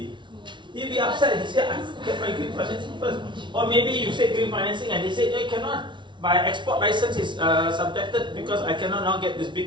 He'll be upset. He said, I get my green financing first. Or maybe you say green financing and they say, no, you cannot. My export license is subjected because I cannot now get this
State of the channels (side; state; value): left; late; 0.24 ms